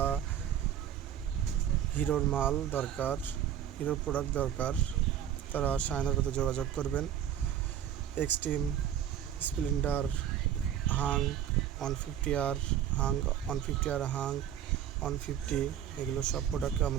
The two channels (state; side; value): quieter; left; 10.1 dB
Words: হিরোর মাল দরকার, হিরোর প্রোডাক্ট দরকার, তারা শাইনার সাথে যোগাযোগ করবেন। Extreme, Splendor, Hang 150R, Hang 150R, Hang 150, এগুলো সব প্রোডাক্ট